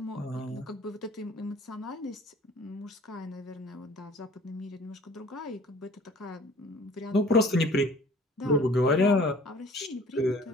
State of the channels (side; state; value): both; normal; correlation 0.50